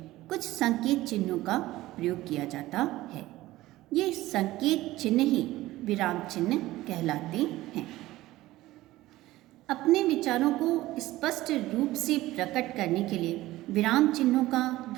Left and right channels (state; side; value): quieter; left; 17.0 dB